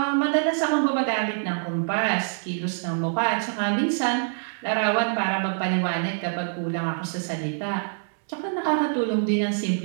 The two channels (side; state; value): left; silent; 62 dB below the other